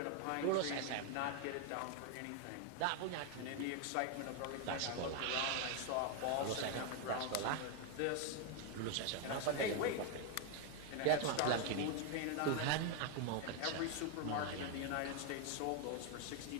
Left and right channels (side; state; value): both; different; correlation 0.00